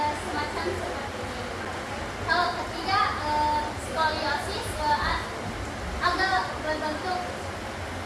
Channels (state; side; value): identical; both; correlation 1.00